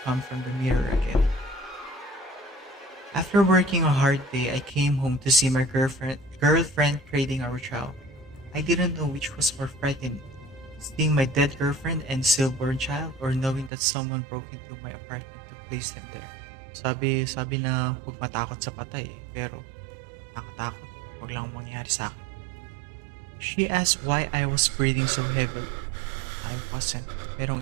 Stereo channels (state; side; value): drops out; left; at 13.7 s